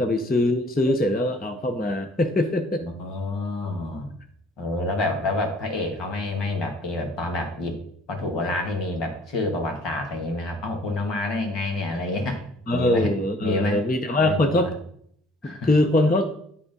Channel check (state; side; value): normal; both; correlation 0.57